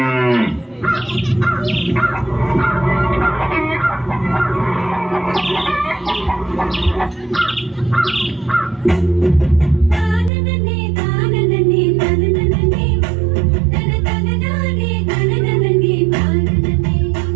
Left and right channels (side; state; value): left; drops out; at 10.3 s